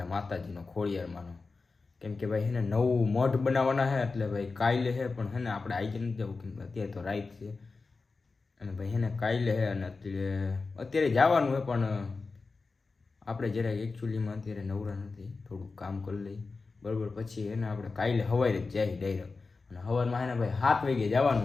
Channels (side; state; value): right; quieter; 4.1 dB